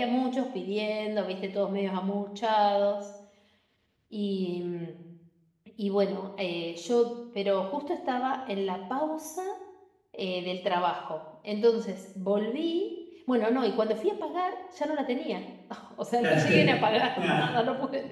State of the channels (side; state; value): both; identical; correlation 1.00